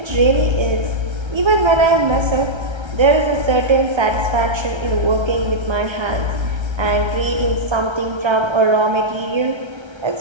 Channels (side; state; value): left; late; 1.3 ms